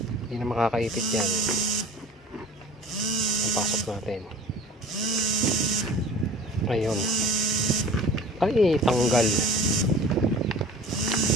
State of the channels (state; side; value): normal; both; correlation 0.41